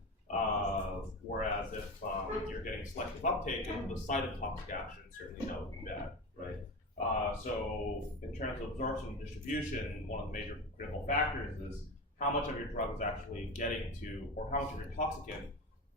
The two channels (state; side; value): normal; both; correlation 0.25